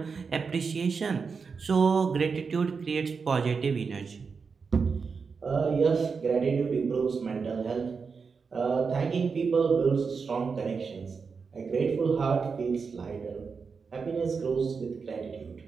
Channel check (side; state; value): left; quieter; 5.3 dB